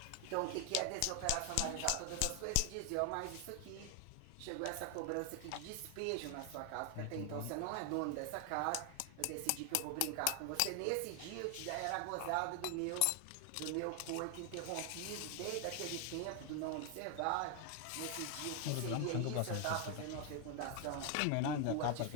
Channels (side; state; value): both; different; correlation 0.00